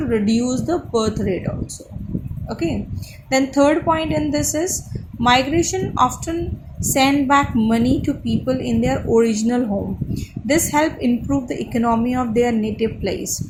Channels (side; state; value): both; identical; correlation 1.00